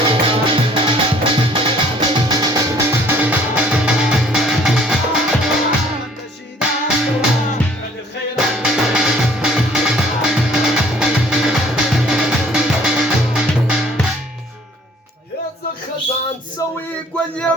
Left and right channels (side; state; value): both; normal; correlation 0.57